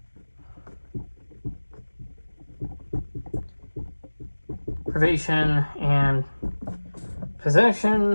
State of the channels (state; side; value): inverted; both; correlation -1.00